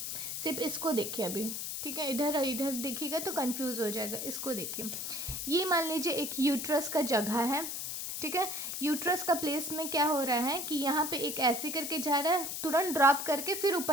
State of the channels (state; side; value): noise; left; hiss, 4 dB below the sound